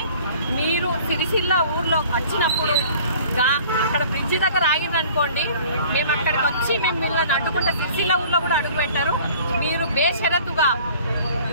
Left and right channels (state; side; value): inverted; both; correlation -0.50